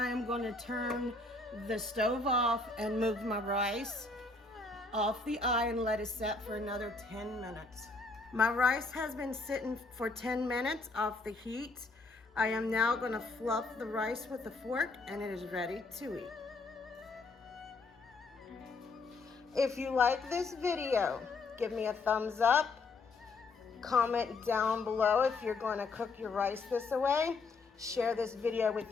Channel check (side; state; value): right; quieter; 3.7 dB